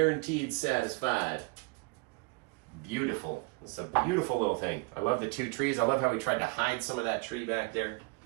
satisfied. Beautiful. It's a beautiful little thing. I love the two trees. I love how we tried to hide some of that tree back there.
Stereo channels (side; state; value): left; quieter; 29.3 dB